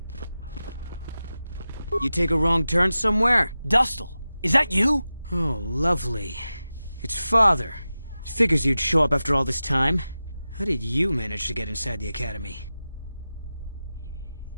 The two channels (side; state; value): both; inverted; correlation -0.94